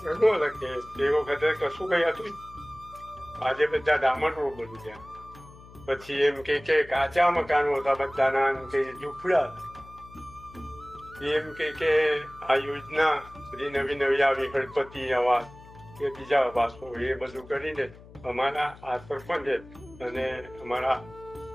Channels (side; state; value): left; noise; hum, 20 dB below the sound